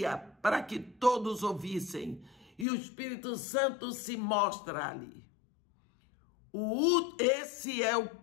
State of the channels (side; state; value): right; drops out; at 2.7 s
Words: para que todos ouvissem. E o Espírito Santo se mostra ali. Esse é o